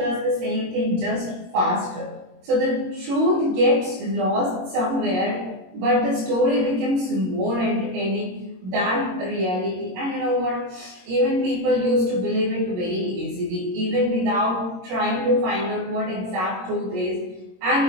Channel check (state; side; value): late; left; 22 ms